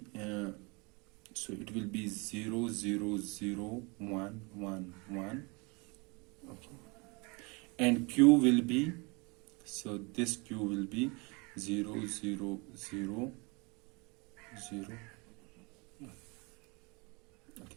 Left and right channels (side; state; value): left; quieter; 28.9 dB